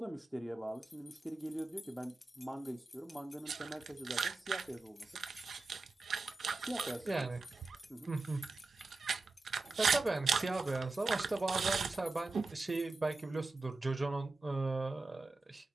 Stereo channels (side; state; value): left; quieter; 3.4 dB